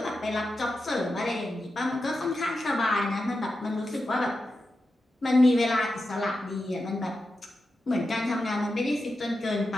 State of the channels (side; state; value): both; normal; correlation 0.90